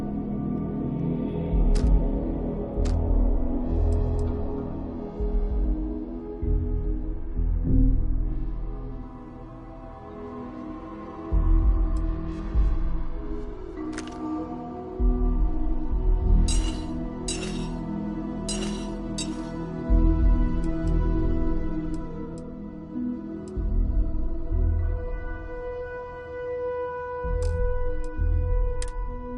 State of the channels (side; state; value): both; identical; correlation 1.00